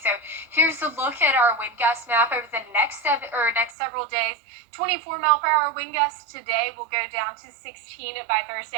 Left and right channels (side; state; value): left; drops out; at 3.8 s